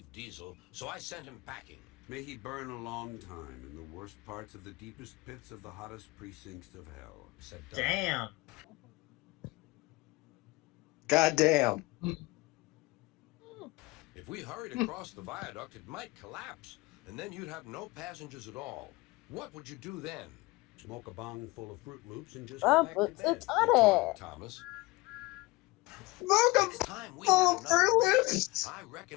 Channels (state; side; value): quieter; right; 22.3 dB